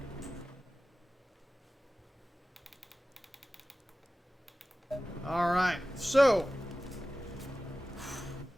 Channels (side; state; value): both; normal; correlation 0.96